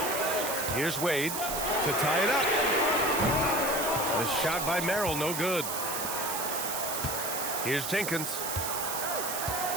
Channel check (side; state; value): right; noise; hiss, 3 dB below the sound